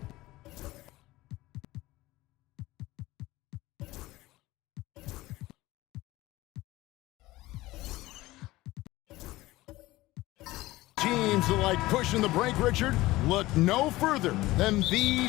teams that like pushing the break, Richard, look no further than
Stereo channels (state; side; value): quieter; right; 18.4 dB